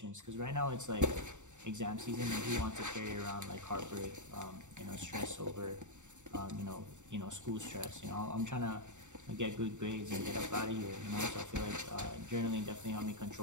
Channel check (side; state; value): left; late; 0.85 ms